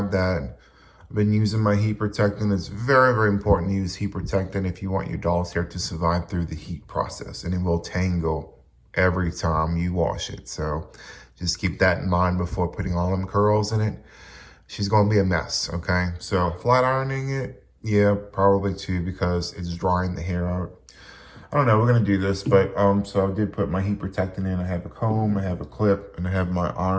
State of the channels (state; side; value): identical; both; correlation 1.00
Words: that. I've been using my heat protectant. It's very important to use heat protectant if you want your doll's hair to survive through the heat process, and it will tangle every time you wash it. So just keep that in mind before putting all them curls in it. She's going to be a mess, okay? So flat ironing it, yeah, probably too, because it's drying the hair out. I don't know, we're gonna do this, but so I did put my heat protectant in. I have a comb, I have a clip, and I have my